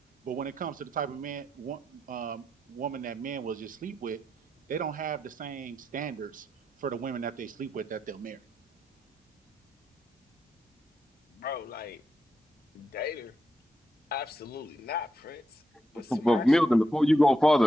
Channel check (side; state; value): both; normal; correlation 0.83